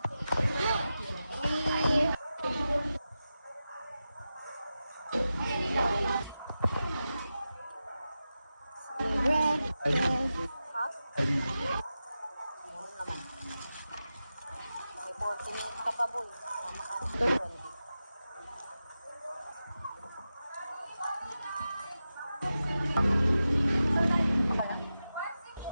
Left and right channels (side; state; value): both; inverted; correlation -0.92